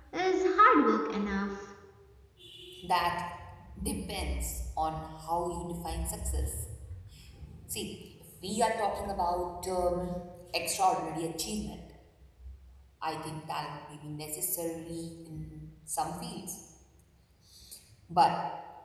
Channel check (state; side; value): identical; both; correlation 1.00